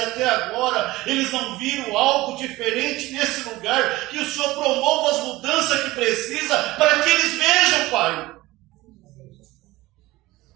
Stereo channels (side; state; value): left; quieter; 18.9 dB